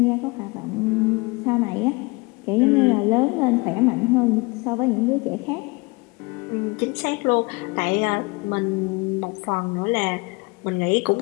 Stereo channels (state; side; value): quieter; right; 26.2 dB